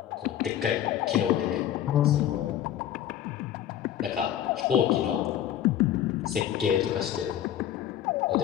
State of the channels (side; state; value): right; quieter; 11.1 dB